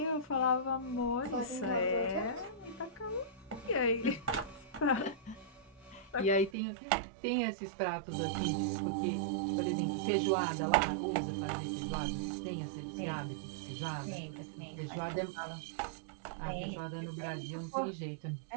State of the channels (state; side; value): drops out; left; at 6.5 s